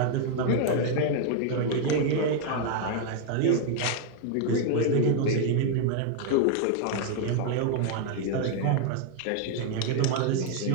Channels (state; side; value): different; both; correlation 0.00